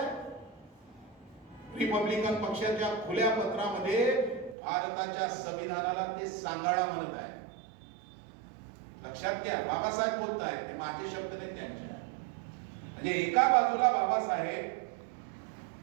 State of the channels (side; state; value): left; drops out; at 4.5 s